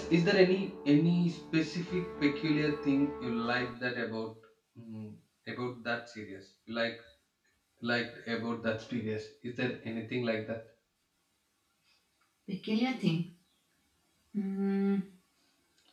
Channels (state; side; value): identical; both; correlation 1.00